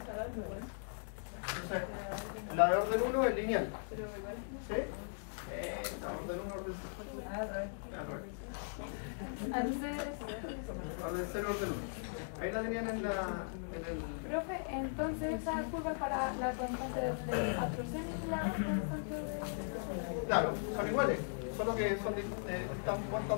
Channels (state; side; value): silent; right; digital silence